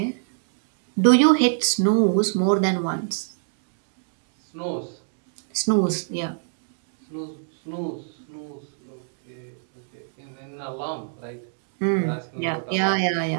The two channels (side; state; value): left; silent; digital silence